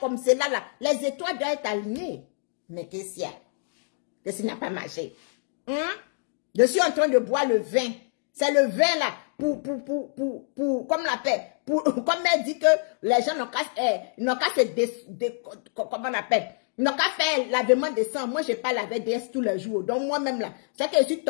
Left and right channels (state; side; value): silent; right; 61 dB below the other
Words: comme cela, là, les étoiles doivent être alignées. Mais qu'est-ce qu'il y a? Qu'est-ce qui n'a pas marché? Je suis en train de boire le vin. C'est le vin, là, comme on l'appelle, comme elle dit que les gens n'ont qu'à comment on appelle? Ils n'ont qu'à faire lavement de sang. Moi, je n'ai pas lavé DS tous les jours. Donc, moi-même, là, c'est que je suis